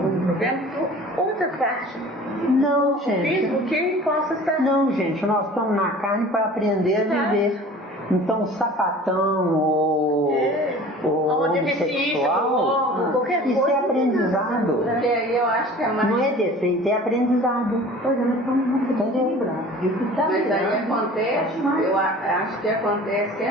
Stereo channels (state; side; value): normal; both; correlation 0.44